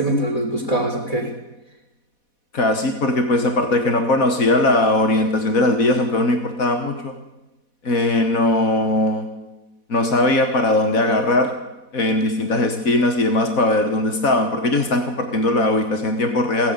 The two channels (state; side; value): late; right; 4.1 ms